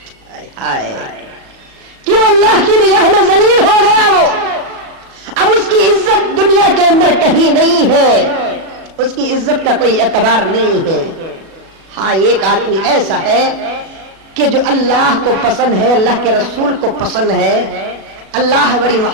کیوں؟ اللہ کی نگاہ میں ذلیل ہو گیا وہ، اب اس کی عزت دنیا کے اندر کہیں نہیں ہے، اس کی عزت کا کوئی اعتبار نہیں ہے۔ ہاں ایک آدمی ایسا ہے کہ جو اللہ کو پسند ہے، اللہ کے رسول کو پسند ہے، اللہ بڑی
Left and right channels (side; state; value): left; late; 36 ms